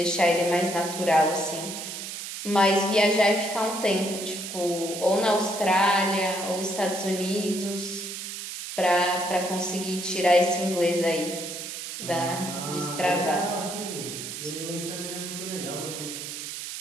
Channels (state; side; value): noise; right; hiss, 8 dB below the sound